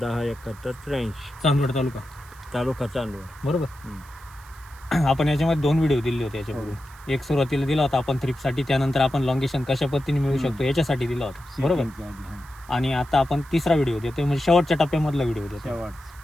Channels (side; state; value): right; noise; hiss, 25 dB below the sound